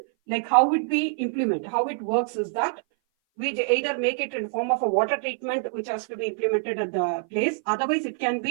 like how it works is that we either make it in form of a water treatment which has to be implemented at the place. Otherwise, it can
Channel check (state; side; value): silent; left; 58 dB below the other